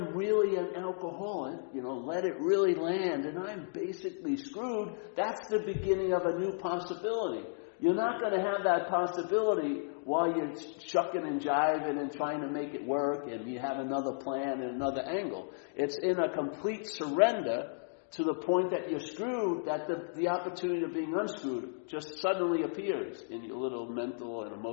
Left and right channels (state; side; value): silent; right; digital silence